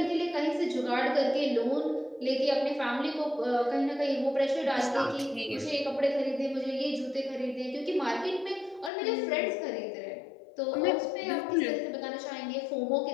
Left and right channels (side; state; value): right; drops out; at 8.9 s